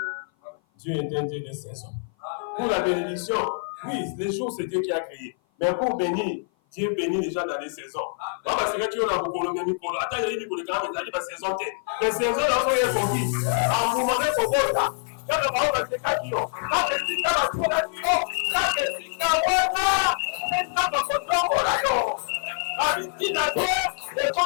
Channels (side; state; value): right; silent; 56 dB below the other